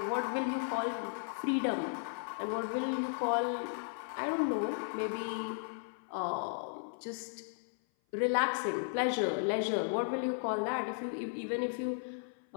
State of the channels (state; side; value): silent; right; 54 dB below the other